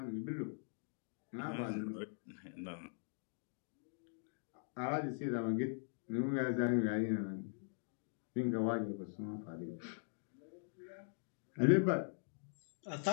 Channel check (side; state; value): right; silent; digital silence